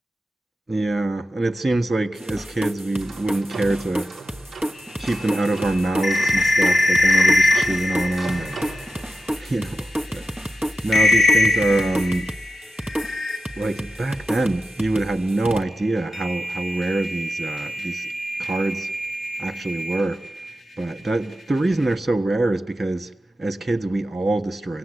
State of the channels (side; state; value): both; normal; correlation 0.90